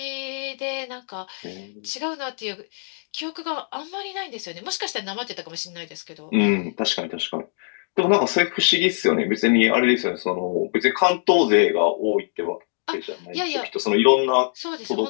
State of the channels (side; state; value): right; silent; digital silence